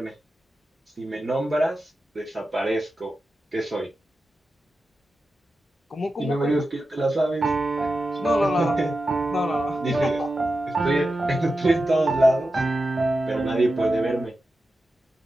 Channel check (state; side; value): normal; both; correlation 0.91